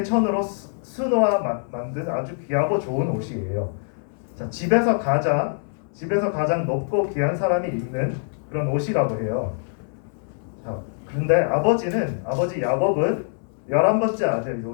수놓아 만든 아주 귀하고 좋은 옷이에요. 자, 집에서 가장 높고 귀한 사람이 입는 그런 옷이라고 해요. 자, 그런데 아버지 야곱은 11번째 아들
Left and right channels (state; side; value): silent; right; 63 dB below the other